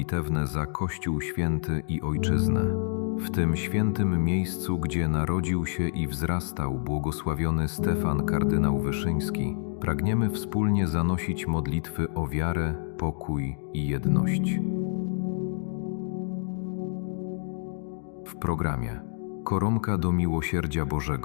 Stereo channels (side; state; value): right; silent; digital silence